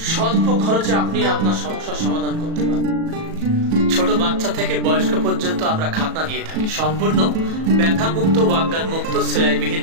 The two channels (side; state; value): left; late; 37 ms